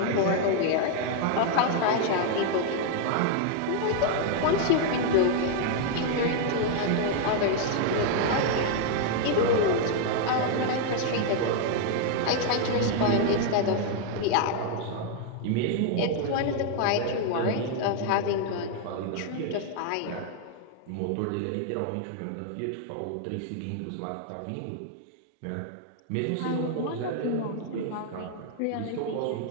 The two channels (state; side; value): different; both; correlation 0.00